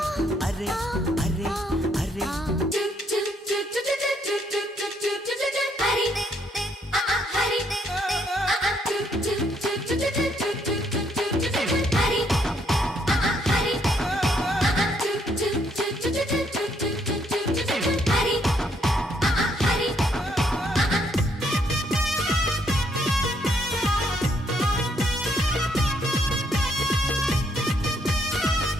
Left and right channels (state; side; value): normal; both; correlation 0.71